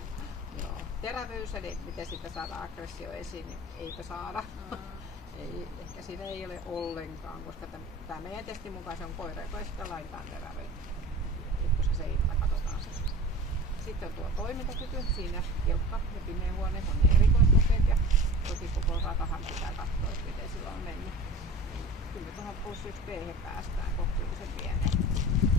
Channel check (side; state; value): both; normal; correlation 0.38